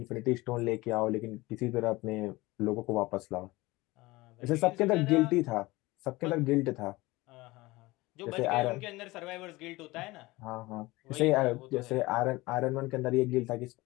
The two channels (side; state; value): right; quieter; 20.7 dB